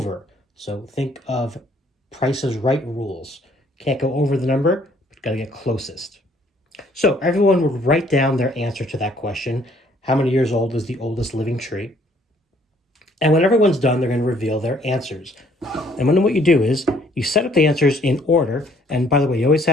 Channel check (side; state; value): both; normal; correlation 0.63